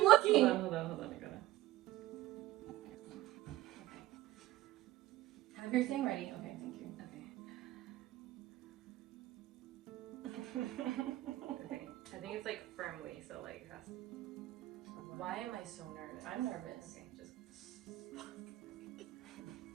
looking. Hold on. I gotta. Okay. Have your thing ready. Okay, thank you. Okay. I think it's like firmly, so like it has to... Why am I so nervous? I'm nervous. Okay, just...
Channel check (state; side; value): quieter; left; 16.1 dB